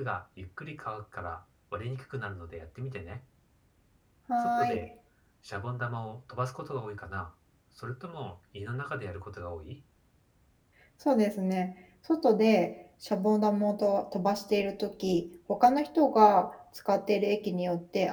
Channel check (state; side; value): identical; both; correlation 1.00